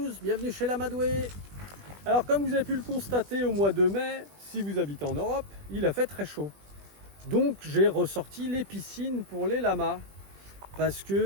bienvenue chez l'Amadoué. Alors comme vous avez pu le constater au mois de mai, si vous habitez en Europe, il a fait très chaud. Donc j'ai ressorti les piscines pour les lamas. Parce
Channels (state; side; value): late; left; 20 ms